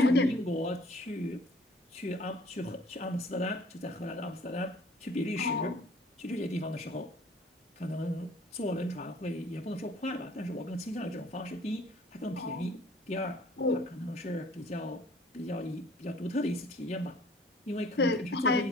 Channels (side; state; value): both; normal; correlation 0.54